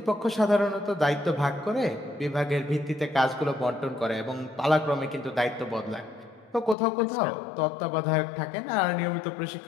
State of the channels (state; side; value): drops out; right; at 6.8 s